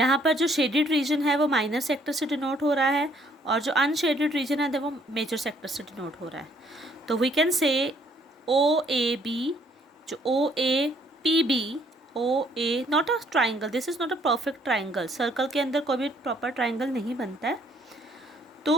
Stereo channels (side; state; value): both; normal; correlation 0.65